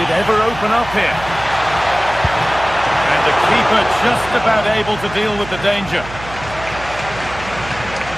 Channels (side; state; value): right; noise; hum, 14 dB below the sound